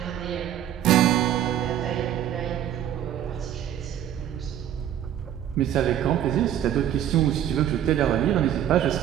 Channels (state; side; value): quieter; left; 10.8 dB